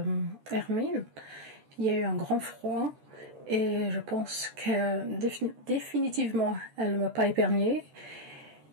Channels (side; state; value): left; late; 13 ms